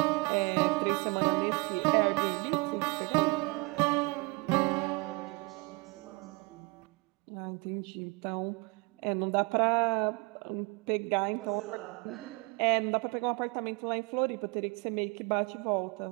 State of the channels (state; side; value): quieter; left; 27.7 dB